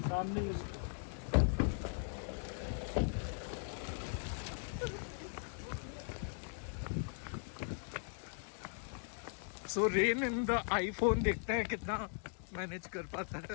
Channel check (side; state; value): right; silent; 52 dB below the other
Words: सामने सो रेन इन द आईफोन देखते हैं कितना मैनेज कर पाता